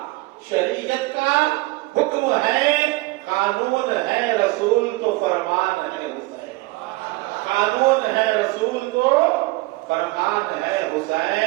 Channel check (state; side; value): quieter; left; 22.2 dB